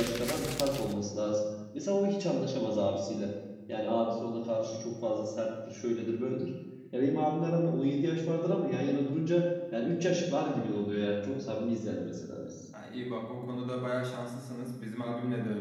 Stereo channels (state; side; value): identical; both; correlation 1.00